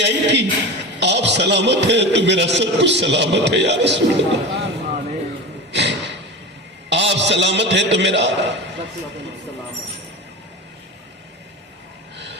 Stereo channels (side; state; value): both; normal; correlation 0.28